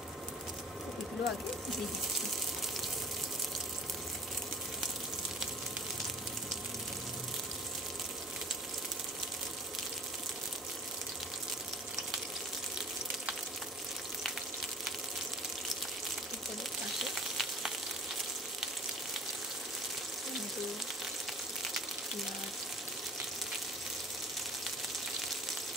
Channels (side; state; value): both; normal; correlation 0.44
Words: এগুলো আগে দিয়ে দিচ্ছি। এরপরে পাশে টমেটো, পেঁয়াজ,